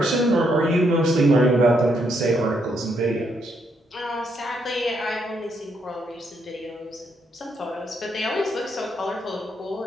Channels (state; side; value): normal; both; correlation 0.75